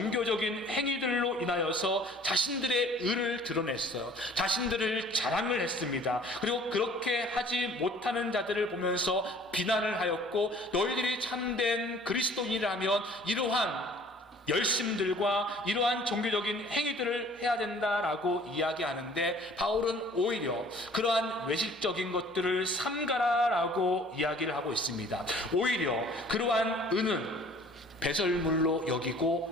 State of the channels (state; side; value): normal; both; correlation 0.52